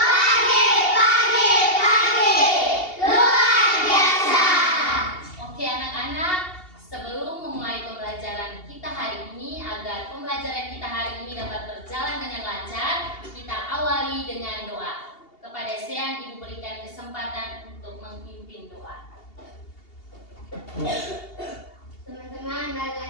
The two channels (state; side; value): late; right; 2.8 ms